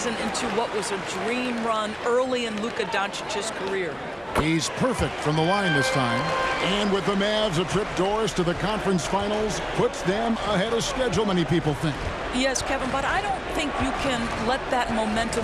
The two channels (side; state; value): both; identical; correlation 1.00